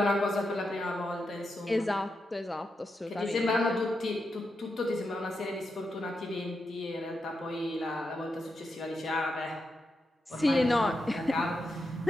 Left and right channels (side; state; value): both; normal; correlation 0.86